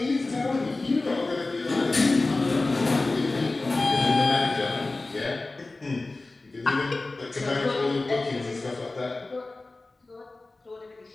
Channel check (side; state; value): right; quieter; 3.2 dB